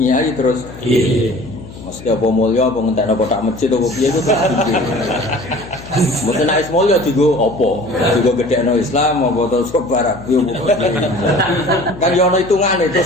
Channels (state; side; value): noise; left; hum, 16 dB below the sound